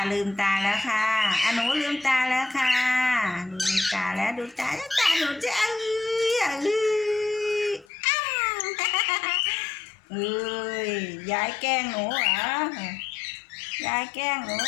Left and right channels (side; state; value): right; drops out; at 7.9 s